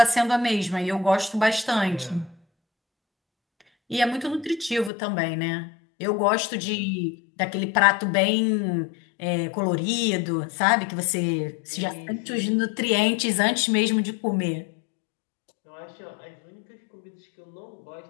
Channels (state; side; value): drops out; right; at 4.9 s